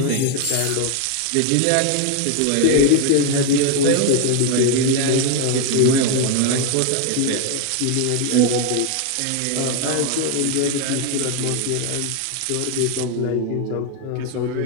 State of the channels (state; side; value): different; both; correlation 0.01